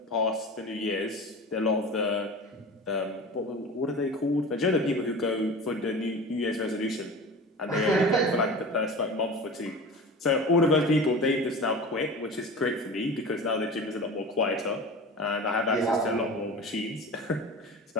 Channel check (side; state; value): both; normal; correlation 0.34